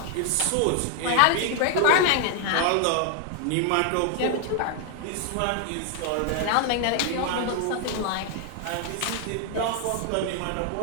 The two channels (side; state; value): both; different; correlation 0.00